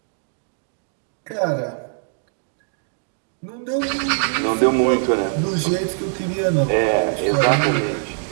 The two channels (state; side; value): silent; left; 64 dB below the other